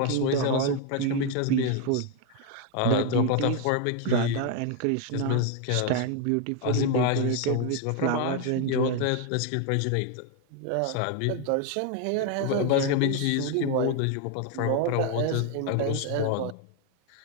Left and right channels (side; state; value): both; different; correlation 0.01